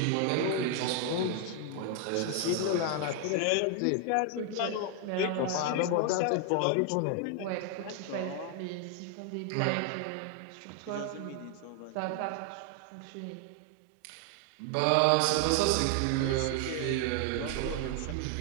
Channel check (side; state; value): both; different; correlation 0.00